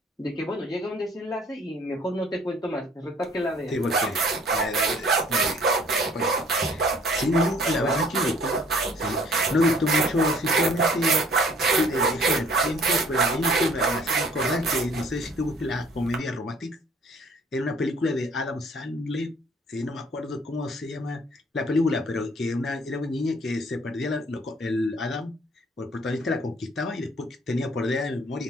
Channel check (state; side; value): normal; both; correlation 0.57